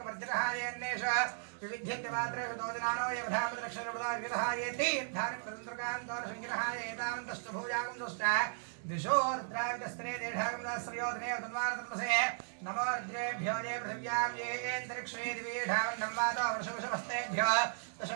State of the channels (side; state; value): left; silent; digital silence